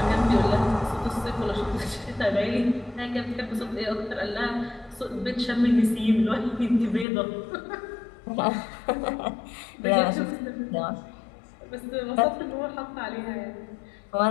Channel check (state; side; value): drops out; right; at 7.1 s